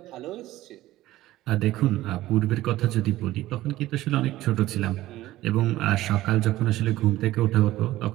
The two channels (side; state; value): left; quieter; 15.9 dB